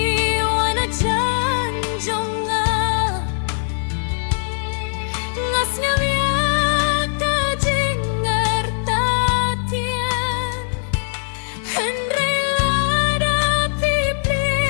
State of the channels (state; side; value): silent; right; digital silence